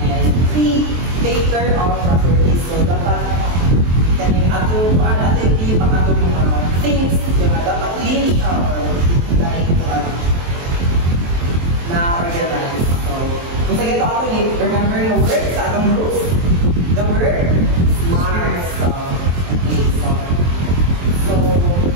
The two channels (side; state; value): left; late; 23 ms